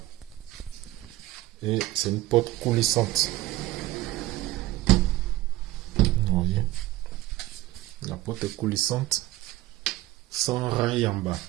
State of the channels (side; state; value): left; quieter; 16.9 dB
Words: Et c'est une porte coulissante. Vous voyez, la porte est coulissante, sans rail en bas.